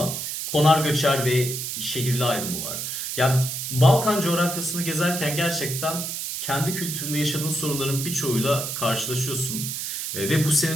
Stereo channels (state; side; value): noise; right; hiss, 4 dB below the sound